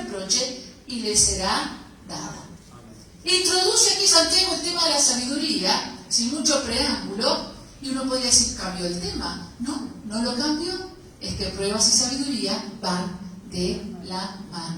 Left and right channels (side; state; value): both; identical; correlation 1.00